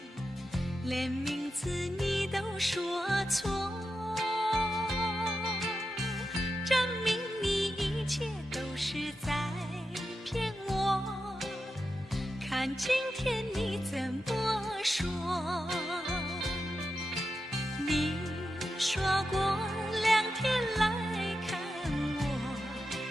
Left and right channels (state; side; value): normal; both; correlation 0.89